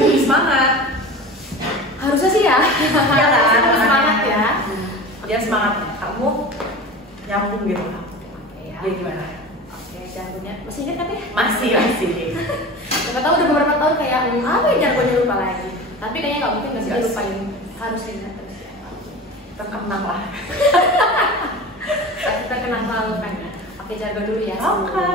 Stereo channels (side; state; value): both; normal; correlation 0.33